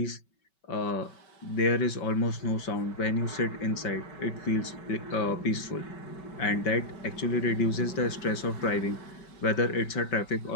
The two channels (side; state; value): right; late; 5.3 ms